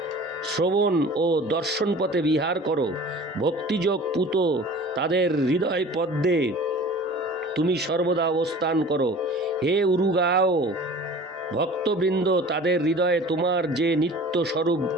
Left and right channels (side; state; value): both; normal; correlation 0.43